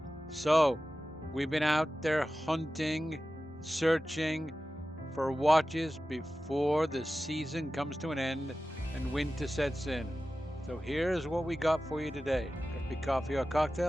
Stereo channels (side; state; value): both; normal; correlation 0.95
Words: So, we've been out there hunting, searching for watches before the season comes to an end and winter sets in. So here's what we got for you today. Could be coffee or